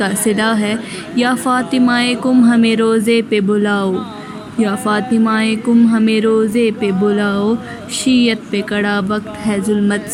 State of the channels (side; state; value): both; identical; correlation 1.00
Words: صدا ہے، یا فاطمہ کم ہمیں روزے پہ بلاؤ، یا فاطمہ کم ہمیں روزے پہ بلاؤ، شیعت پہ کڑا وقت ہے ظلمت